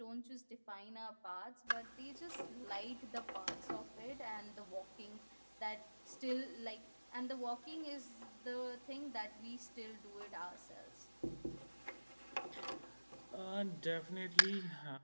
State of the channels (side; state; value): both; inverted; correlation -1.00